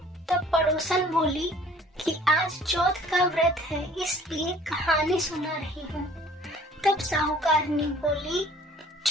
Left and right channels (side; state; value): both; normal; correlation 0.53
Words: तब पड़ोसन बोली कि आज चौथ का व्रत है, इसलिए कहानी सुना रही हूँ। तब साहूकारनी बोली,